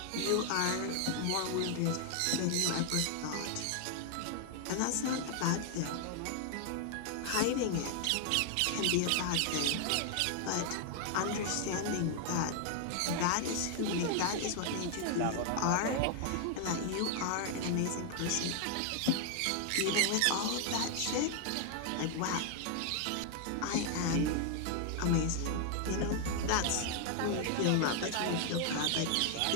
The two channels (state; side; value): different; both; correlation 0.00